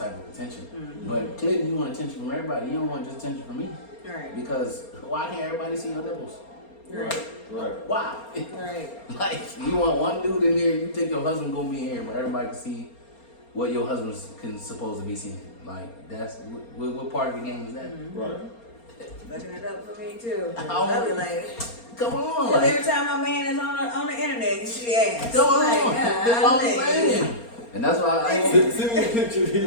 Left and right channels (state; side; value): late; right; 4.3 ms